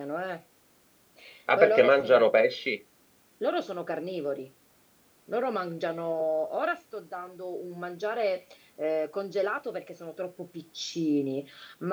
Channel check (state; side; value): identical; both; correlation 1.00